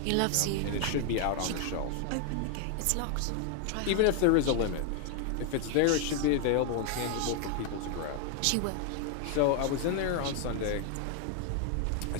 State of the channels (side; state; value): both; different; correlation 0.00